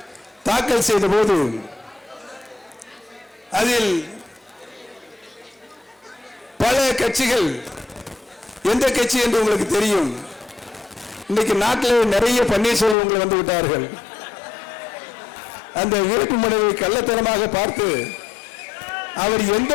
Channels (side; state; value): right; drops out; at 13.0 s